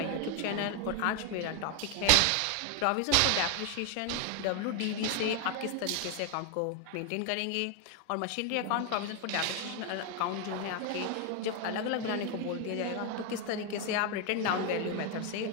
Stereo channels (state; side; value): different; both; correlation 0.01